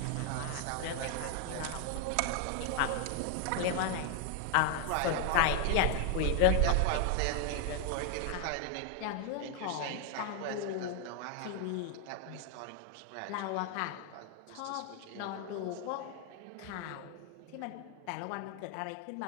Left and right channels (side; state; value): both; different; correlation 0.01